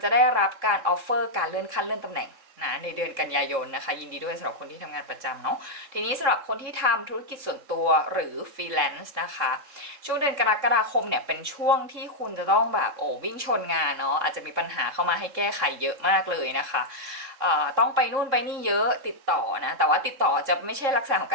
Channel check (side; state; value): left; late; 3.7 ms